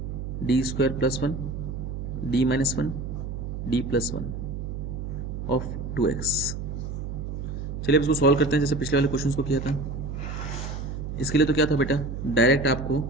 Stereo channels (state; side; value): noise; right; hum, 5 dB below the sound